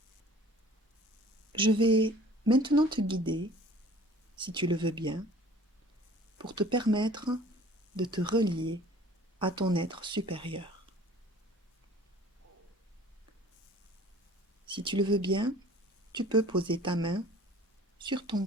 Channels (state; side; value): normal; both; correlation 0.49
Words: Je vais maintenant te guider, si tu le veux bien, pour te permettre de te relier à ton être supérieur. Si tu le veux bien, tu peux poser ta main sur ton